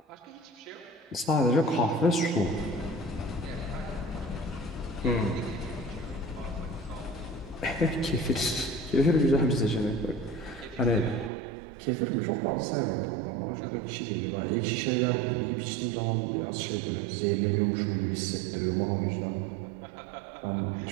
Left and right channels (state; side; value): drops out; left; at 11.3 s